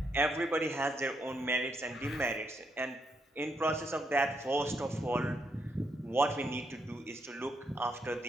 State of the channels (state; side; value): normal; both; correlation 0.78